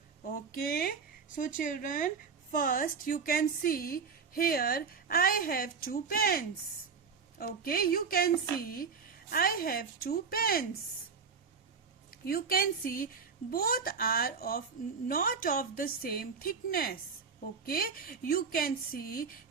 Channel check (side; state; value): left; quieter; 5.6 dB